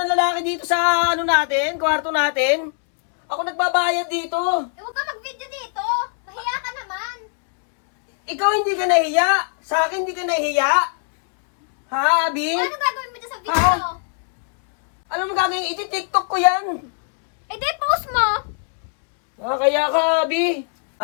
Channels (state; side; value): silent; right; 65 dB below the other